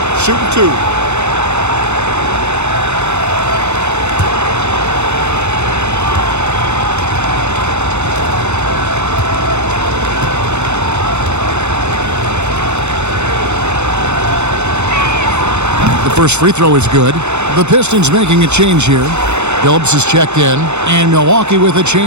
Shooting 2. The first free throw is good. The Pistons making a change here. Phillips is checked in, and Milwaukee with a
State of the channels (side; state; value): left; late; 0.82 ms